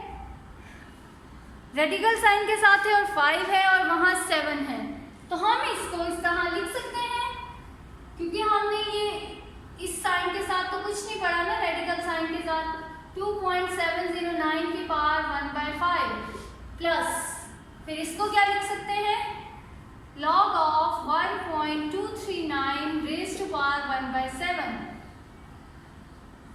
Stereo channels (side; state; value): both; identical; correlation 1.00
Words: रेडिकल साइन के साथ है और 5 है और वहां 7 है, तो हम इसको इस तरह लिख सकते हैं क्योंकि हमने ये इस साइन के साथ तो कुछ नहीं पढ़ा ना. रेडिकल साइन के साथ 2.709 की पावर 1/5 प्लस फिर इसको क्या लिख सकते हैं? log of 1.239 raised to power 1/7.